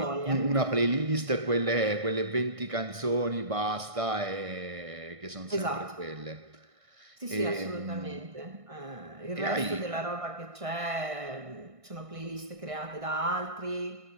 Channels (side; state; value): left; late; 1.6 ms